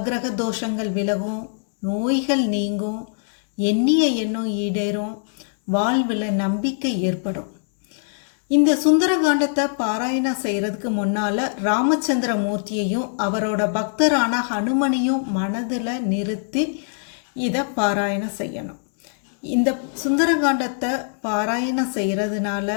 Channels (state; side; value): silent; right; digital silence